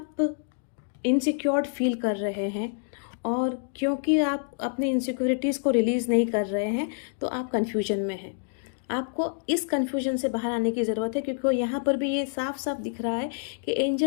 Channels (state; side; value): silent; right; digital silence